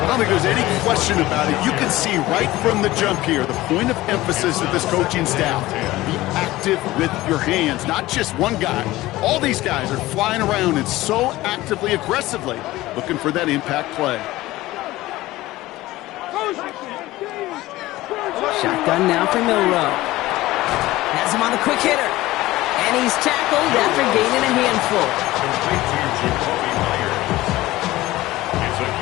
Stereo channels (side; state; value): right; quieter; 17.6 dB